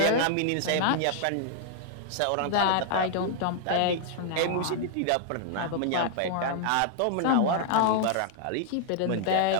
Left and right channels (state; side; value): different; both; correlation -0.01